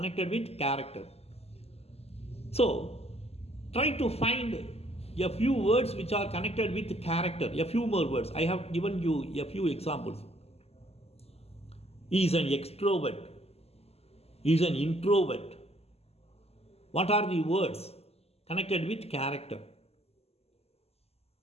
with character. So try to find a few words which are connected with character. A few more words. I have given you a few examples. He is an extrovert. He is an introvert. What are the words connected with character?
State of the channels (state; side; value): late; right; 0.29 ms